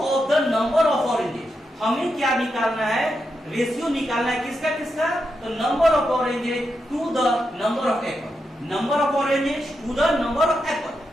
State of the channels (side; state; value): both; normal; correlation 0.85